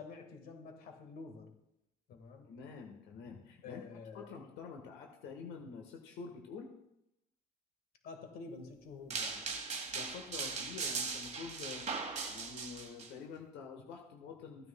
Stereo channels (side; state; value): both; normal; correlation 0.11